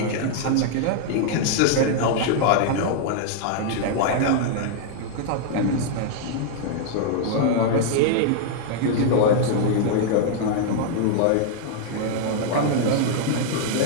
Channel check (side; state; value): both; different; correlation 0.00